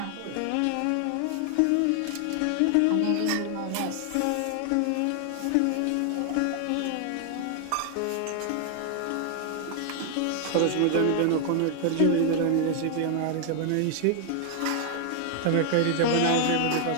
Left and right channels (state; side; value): different; both; correlation 0.00